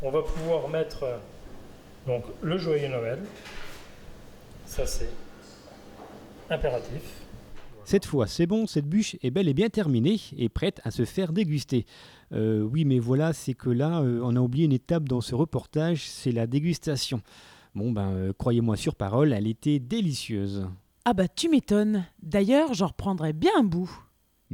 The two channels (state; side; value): identical; both; correlation 1.00